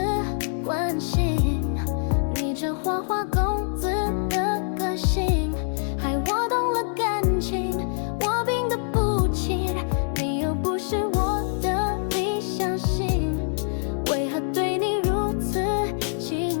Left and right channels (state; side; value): silent; right; digital silence